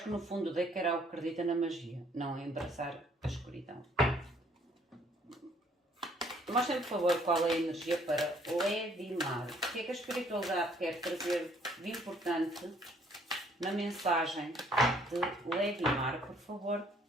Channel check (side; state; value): both; normal; correlation 0.63